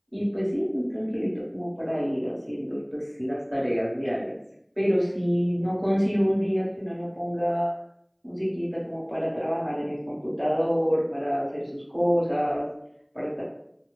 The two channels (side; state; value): both; identical; correlation 1.00